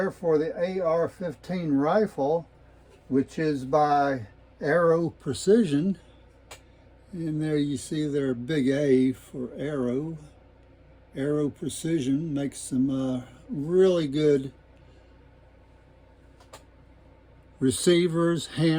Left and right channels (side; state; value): both; identical; correlation 1.00